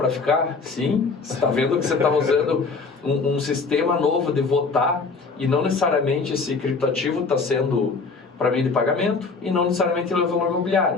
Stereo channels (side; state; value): right; quieter; 4.4 dB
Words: ficar? Sim. Você está vendo que você está usando um sistema novo de votar e não necessariamente esse criptoativo está sendo para meio de pagamento e não necessariamente ele é valor